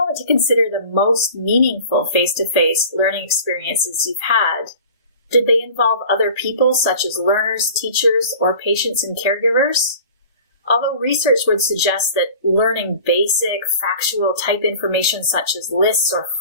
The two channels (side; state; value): both; inverted; correlation -0.42